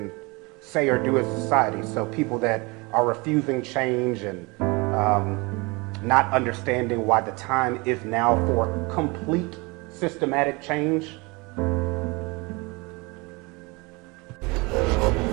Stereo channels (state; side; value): quieter; left; 26.5 dB